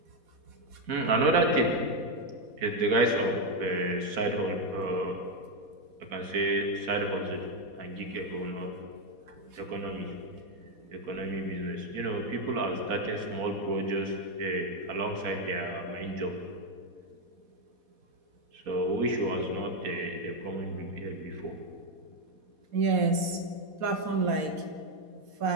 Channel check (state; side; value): late; left; 4.2 ms